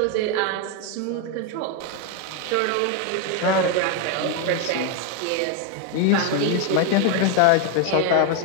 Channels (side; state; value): both; different; correlation 0.01